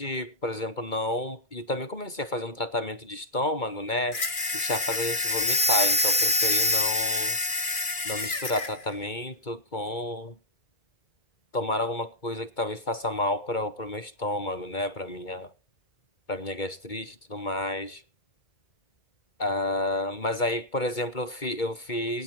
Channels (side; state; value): right; late; 2.4 ms